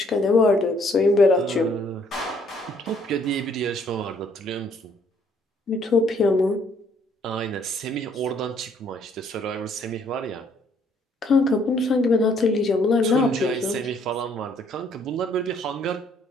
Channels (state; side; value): normal; both; correlation 0.65